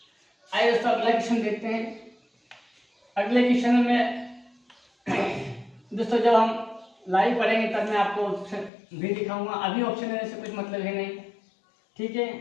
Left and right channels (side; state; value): right; drops out; at 8.7 s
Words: आइए दोस्तों अगला क्वेश्चन देखते हैं। अगले क्वेश्चन में दोस्तों जब हम लाइव पढ़ेंगे तब मैं आपको ऑप्शन भी दिखाऊंगा। अभी ऑप्शन देने से कुछ मतलब है नहीं, ठीक